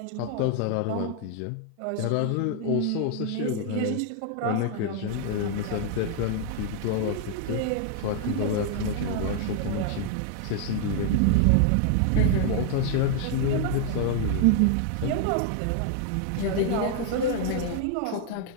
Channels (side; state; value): both; different; correlation 0.00